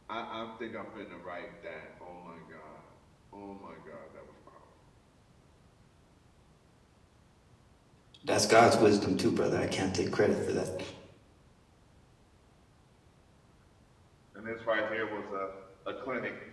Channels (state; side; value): identical; both; correlation 1.00